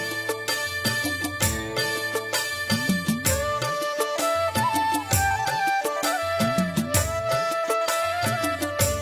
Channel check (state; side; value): identical; both; correlation 1.00